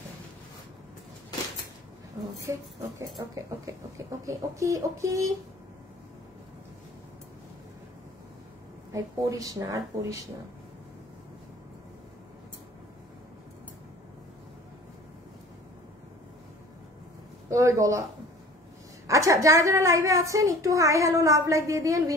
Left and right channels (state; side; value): normal; both; correlation 0.45